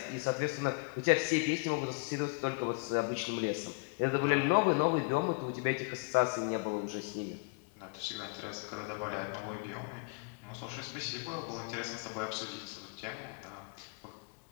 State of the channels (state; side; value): quieter; right; 31.7 dB